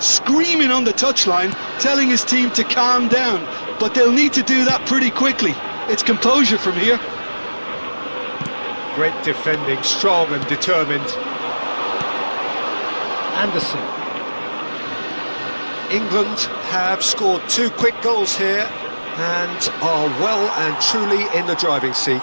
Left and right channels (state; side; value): inverted; both; correlation -1.00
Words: on the touchline, telling his team to calm down. But they'll need to do that pretty quickly. It's composure from here. Great defending, strong and determined. Anderson. England have scored 2 quick goals here and are well and truly in the driving